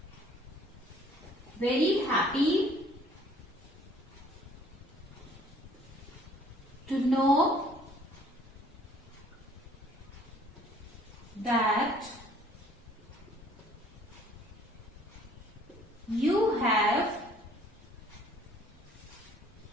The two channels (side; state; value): both; normal; correlation 0.56